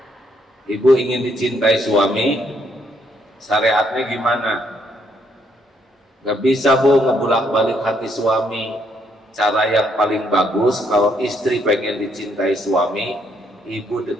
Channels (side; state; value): both; normal; correlation 0.72